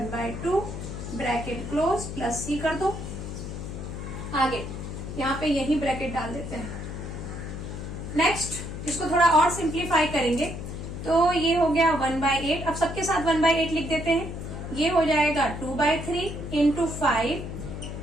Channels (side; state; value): left; noise; hum, 7 dB below the sound